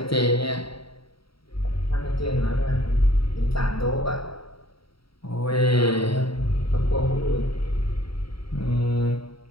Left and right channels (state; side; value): late; right; 0.75 ms